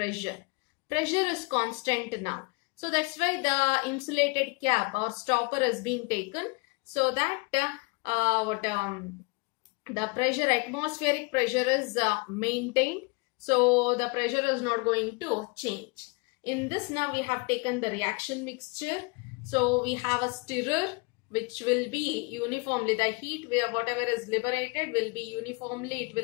Pressure is constant now. So that's why the insulated cap or stopper is being taken, so that the pressure, atmospheric pressure is maintained. So the pressure is not going to change. In this now we have taken the reaction mixture. So we have a stirrer which will be uniformly, the heat where whatever is liberated will be uniformly, it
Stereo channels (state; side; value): quieter; right; 29.3 dB